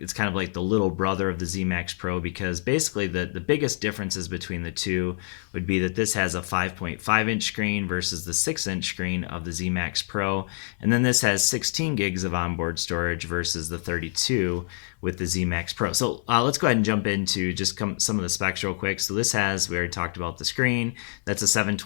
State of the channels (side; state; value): right; silent; digital silence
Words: kind of like the little brother of the Z Max Pro, because basically the biggest differences between the two would be that this has a 5.5 inch screen versus the 6 inch screen of the Z Max Pro. And then this has 16 gigs of onboard storage versus the 32 with the Z Max Pro. So let's go ahead and jump into just some of the specs real quick. So this has, we already talked about the screen. That's a